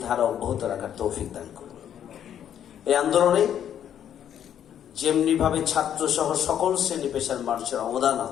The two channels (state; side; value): quieter; right; 9.7 dB